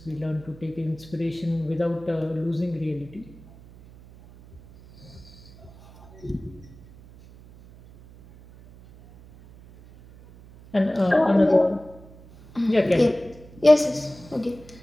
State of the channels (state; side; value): noise; right; hum, 21 dB below the sound